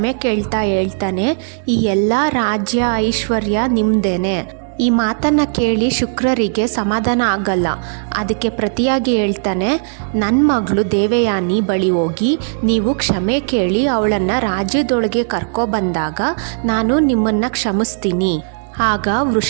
ಕೇಳ್ತಾ ಹೇಳ್ತಾನೆ, ಈ ಎಲ್ಲ ರಾಜ್ಯ ಐಶ್ವರ್ಯ ನಿಮ್ದೇನೆ. ಈ ಮಾತನ್ನು ಕೇಳಿ ಶುಕ್ರರಿಗೆ ಸಮಾಧಾನ ಆಗಲ್ಲ. ಅದಕ್ಕೆ ಪ್ರತಿಯಾಗಿ ಹೇಳ್ತಾನೆ, ನನ್ನ ಮಗಳು ದೇವಯಾನಿ ಬಳಿ ಹೋಗಿ ನೀವು ಕ್ಷಮೆ ಕೇಳಿ ಅವಳನ್ನು ರಾಜ್ಯದೊಳಗೆ ಕರ್ಕೊಬಂದಾಗ ನಾನು ನಿಮ್ಮನ್ನು ಕ್ಷಮಿಸ್ತೀನಿ. ಆಗ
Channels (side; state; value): left; silent; digital silence